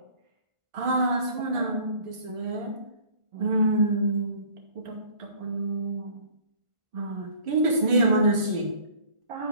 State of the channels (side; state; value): left; late; 1.4 ms